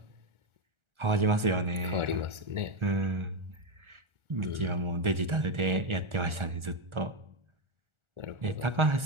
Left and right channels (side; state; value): left; late; 1.4 ms